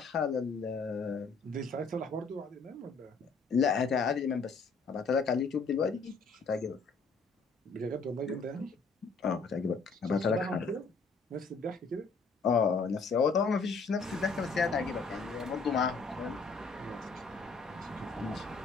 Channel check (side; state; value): right; quieter; 4.4 dB